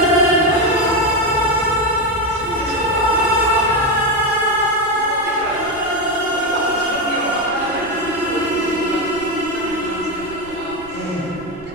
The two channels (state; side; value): noise; right; rumble, 21 dB below the sound